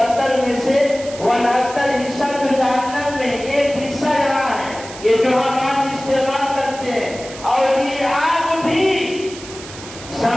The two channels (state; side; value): noise; right; hiss, 15 dB below the sound